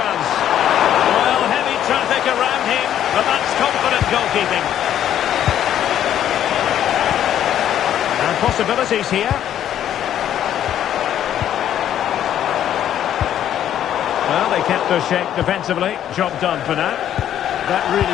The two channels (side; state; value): right; quieter; 10.8 dB